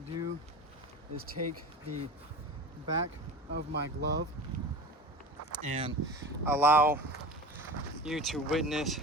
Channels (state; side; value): normal; both; correlation 0.33